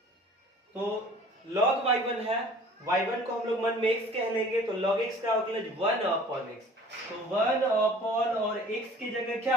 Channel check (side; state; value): both; normal; correlation 0.49